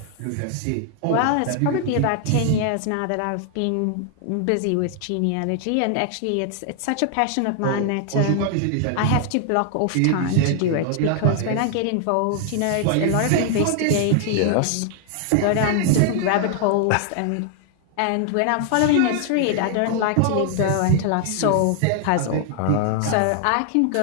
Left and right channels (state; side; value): different; both; correlation 0.00